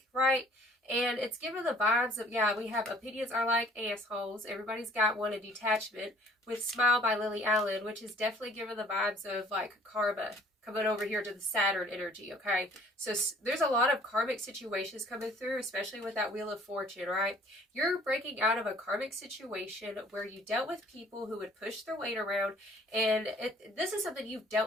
right? And it's given the vibes of, yeah, we have opinions are like assholes. Everybody's got one, a detachment with Smile by Lily Allen, which is definitely given the vibes of like karma coming over here to the Saturn energy, okay? So there's a lot of karmic situations coming through, especially with that Wheel of Fortune, right? You're breaking out of a karmic situation where you dealt with people who would push their weight around, and this is something you've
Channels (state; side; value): normal; both; correlation 0.56